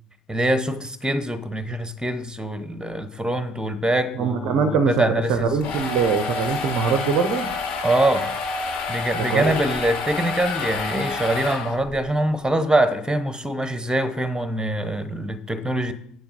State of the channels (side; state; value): both; normal; correlation 0.69